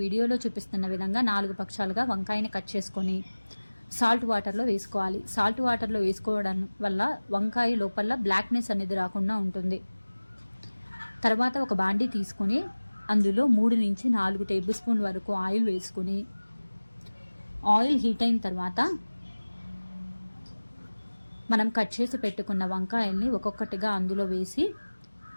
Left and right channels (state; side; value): inverted; both; correlation -1.00